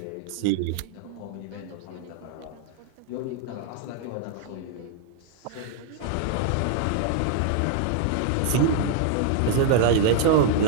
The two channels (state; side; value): different; both; correlation 0.00